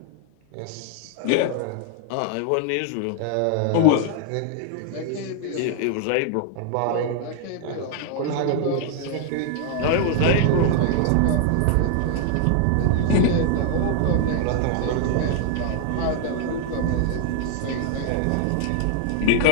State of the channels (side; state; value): both; different; correlation 0.00